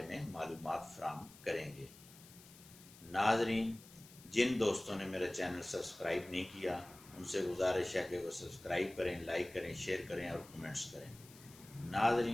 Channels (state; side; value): noise; left; hiss, 21 dB below the sound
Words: में मालूमात फराहम करेंगे। नाज़रीन, जिन दोस्तों ने मेरा चैनल सब्सक्राइब नहीं किया उनसे गुजारिश है कि वो सब्सक्राइब करें, लाइक करें, शेयर करें और कमेंट्स करें।